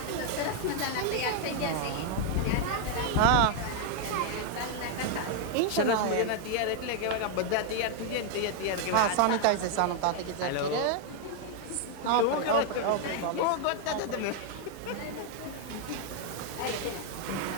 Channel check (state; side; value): different; both; correlation 0.00